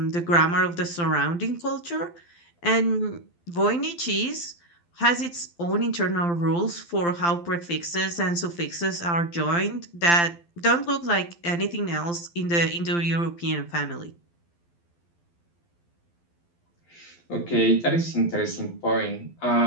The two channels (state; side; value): late; right; 12 ms